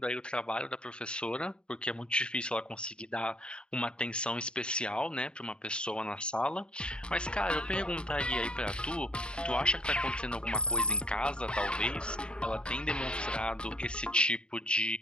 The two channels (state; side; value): late; right; 0.052 ms